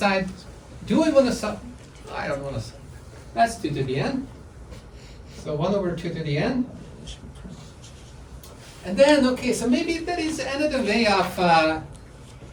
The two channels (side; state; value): both; identical; correlation 1.00